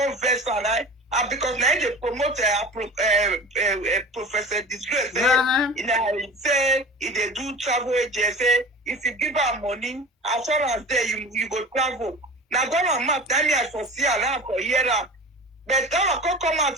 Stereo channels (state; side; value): normal; both; correlation 0.36